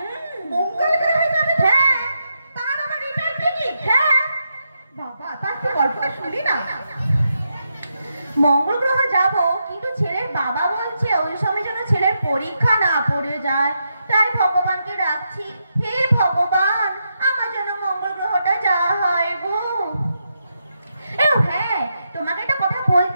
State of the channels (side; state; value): both; inverted; correlation -0.83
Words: মঙ্গল গ্রহে যাবে? হ্যাঁ। তার আবার রিটার্ন টিকিট? হ্যাঁ। বাবা, তার তো গল্পটা শুনি না। মঙ্গল গ্রহ যাব, কিন্তু ছেলের বাবা বলছে ওই সময় যেন ছেলের পরীক্ষা না পড়ে যায়। তাই ভগবানকে ডাকছি, হে ভগবান, আমার জন্য মঙ্গল গ্রহটা যাওয়া হয় গো। হ্যাঁ, তোমাকে একটা কথা